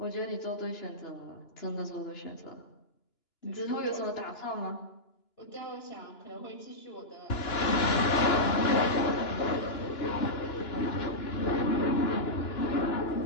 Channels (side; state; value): right; late; 2.9 ms